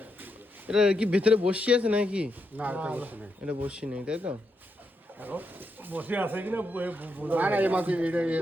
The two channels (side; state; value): both; normal; correlation 0.82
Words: এটা কি ভেতরে বসি আছে নাকি? না এটা বসি নেই, তাই তো?